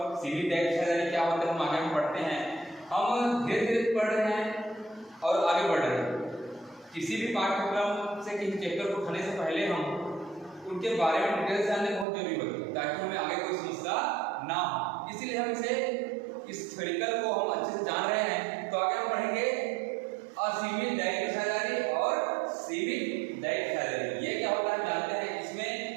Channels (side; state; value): left; drops out; at 12.1 s